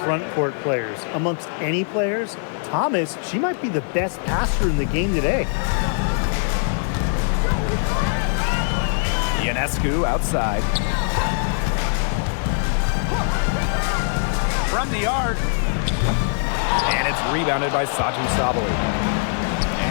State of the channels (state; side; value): silent; right; digital silence